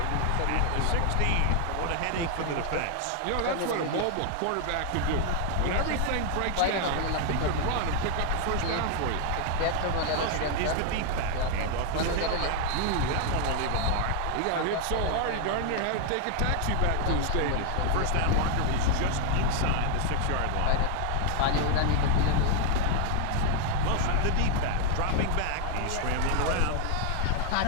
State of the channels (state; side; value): different; both; correlation 0.00